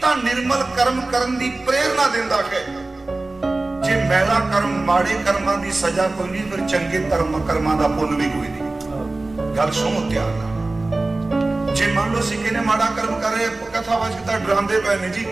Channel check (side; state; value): left; quieter; 3.1 dB